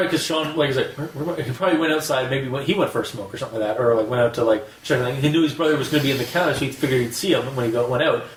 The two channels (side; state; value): both; identical; correlation 1.00